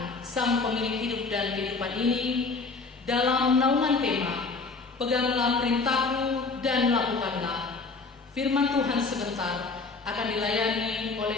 Sang Pemilik hidup dan kehidupan ini, dalam naungan tema Peganglah perintahku dan lakukanlah. Firman Tuhan sebentar akan dilayani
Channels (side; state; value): right; quieter; 4.1 dB